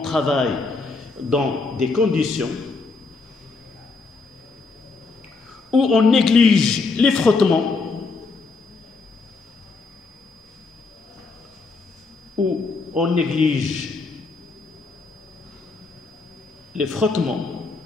où on néglige les frottements,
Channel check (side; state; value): right; quieter; 4.0 dB